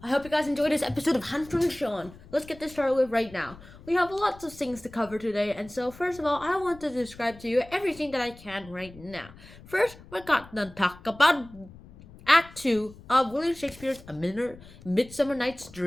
hope you guys enjoyed this episode of Hunter and Sean. Let's get this started with right now. We have lots of things to cover today, and so first of all, I want to describe to you everything that I can right now. First, we're going to talk about Act 2 of William Shakespeare's A Midsummer Night's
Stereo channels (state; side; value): noise; left; rumble, 20 dB below the sound